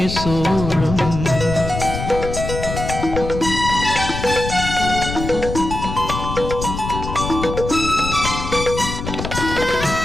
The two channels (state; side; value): noise; left; rumble, 6 dB below the sound